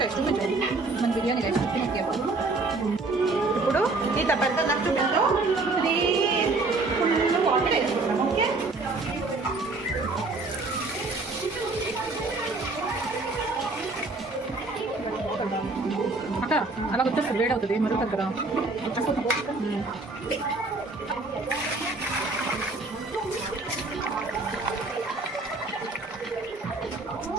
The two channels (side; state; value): left; quieter; 3.4 dB